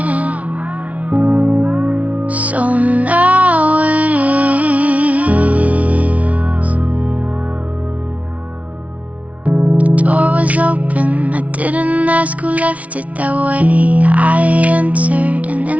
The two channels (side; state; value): left; late; 0.067 ms